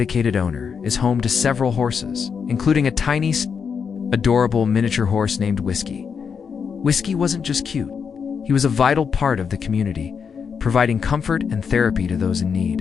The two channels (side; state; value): right; quieter; 6.4 dB